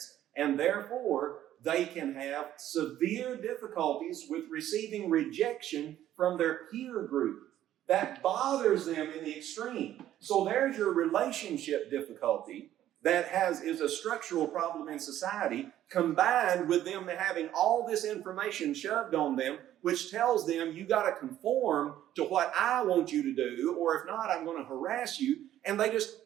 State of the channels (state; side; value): quieter; left; 12.3 dB